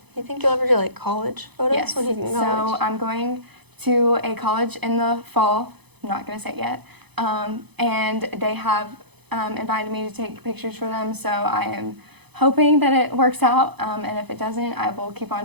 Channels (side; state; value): left; late; 0.98 ms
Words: You think you'll ever do like college photos Yes. when you can So college? I'm going to a college in the fall. I'm not going to say it yet. And they have invited me to take pictures for them. So I am hoping that it works out. And if it doesn't, I will keep on